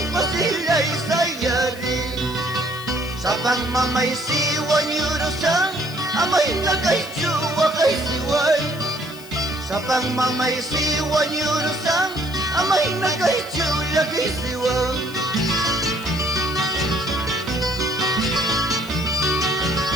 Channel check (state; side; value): noise; left; hiss, 19 dB below the sound